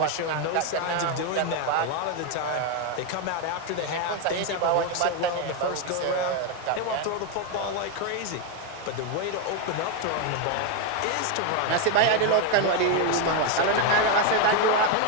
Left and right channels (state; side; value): different; both; correlation 0.01